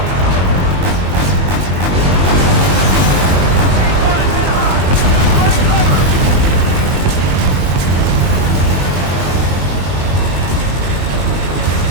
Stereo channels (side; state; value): left; late; 22 ms